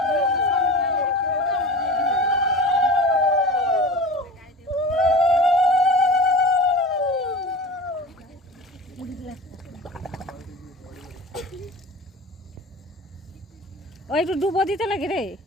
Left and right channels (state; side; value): normal; both; correlation 0.33